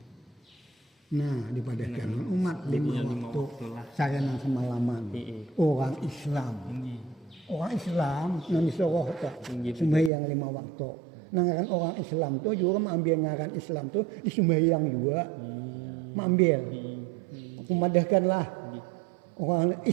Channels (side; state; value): left; drops out; at 10.1 s